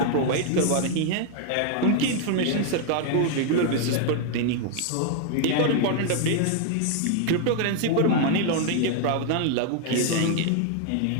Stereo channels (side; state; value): both; different; correlation 0.01